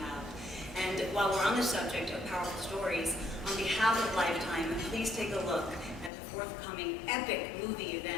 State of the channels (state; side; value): drops out; right; at 6.1 s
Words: And while we're on the subject of powerful stories, on behalf of Lifetime, please take a look at the forthcoming epic movie